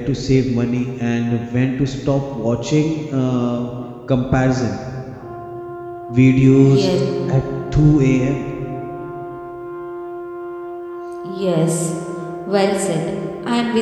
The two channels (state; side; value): identical; both; correlation 1.00